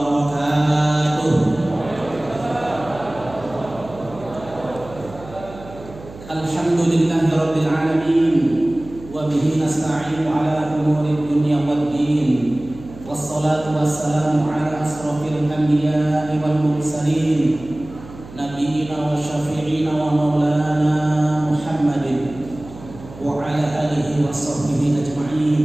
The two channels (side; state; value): right; noise; hum, 17 dB below the sound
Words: Alhamdulillahirabbil alamin wa bihi nasta'inu ala umuri dunya waddin. Wassalatu wassalamu ala asrofil anbiya'i wal mursalin nabiyyina wa syafi'ina wa maulana Muhammadin wa ala alihi wa sahbihi ajma'in.